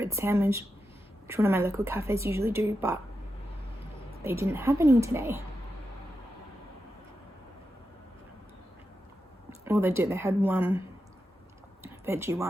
sandwich, which one of my local cafes usually do, but they didn't have any today. Well, they did. They had one veggie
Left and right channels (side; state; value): both; normal; correlation 0.88